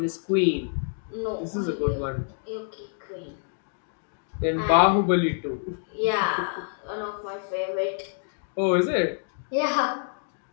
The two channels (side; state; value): right; silent; 60 dB below the other